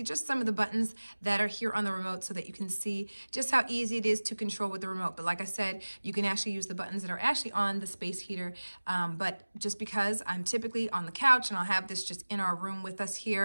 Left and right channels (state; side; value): inverted; both; correlation -1.00